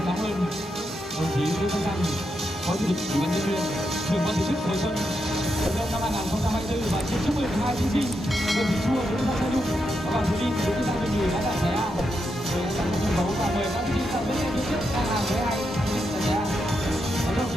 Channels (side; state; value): both; normal; correlation 0.84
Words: ơn đồng chí Lê Văn Thành, Phó Chủ tịch Ủy ban nhân dân huyện, trưởng ban tổ chức Hồi Xuân Vận động năm 2024 và xin chúc mừng hai thí sinh Nguyễn Thị Chua, Nguyễn Văn Thanh Nhung và Hoàng Thúy Linh, Nguyễn Văn Thanh Nhung đã đạt giải A. Để sẵn sàng sân khấu và mời các thí sinh sang bên phía trước đang làm với hai thí sinh giải A. Và đồng